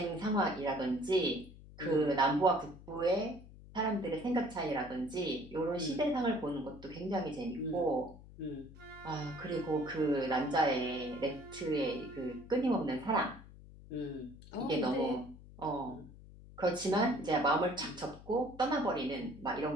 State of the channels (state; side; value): noise; left; hum, 18 dB below the sound